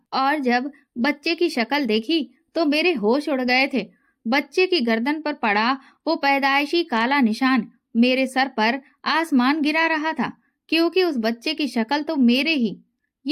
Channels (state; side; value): identical; both; correlation 1.00